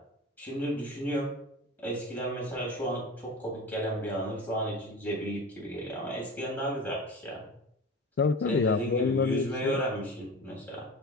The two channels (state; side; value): normal; both; correlation 0.33